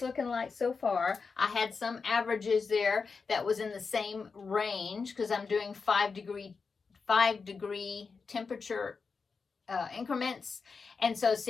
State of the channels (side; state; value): right; quieter; 4.9 dB